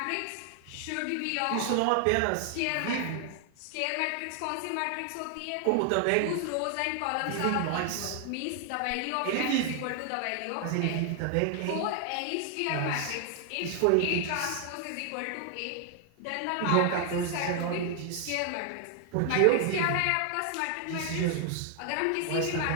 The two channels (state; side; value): different; both; correlation 0.00